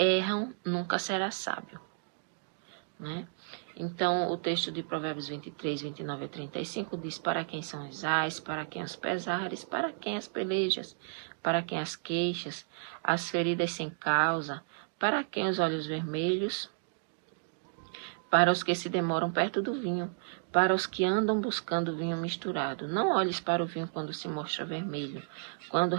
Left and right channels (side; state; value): left; silent; digital silence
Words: nunca será sábio, né? Então, o texto de Provérbios 23, 29 a 35 diz: para quem são os ais, para quem os pesares, para quem as pelejas, para quem as queixas, as feridas sem causa, para quem os olhos vermelhos, para os que se demoram perto do vinho, para os que andam buscando vinho misturado. Não olhes para o vinho quando se mostra vermelho, quando